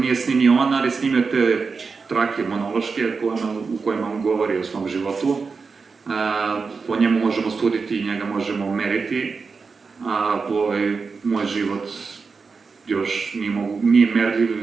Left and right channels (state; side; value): quieter; left; 4.8 dB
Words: snimio on, ali snimio te trake monološke u kojima on govori o svom životu. Po njemu možemo suditi i njega možemo meriti, a moj život još nije merljiv,